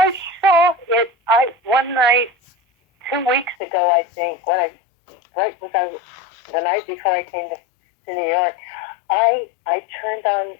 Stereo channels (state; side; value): drops out; right; at 3.6 s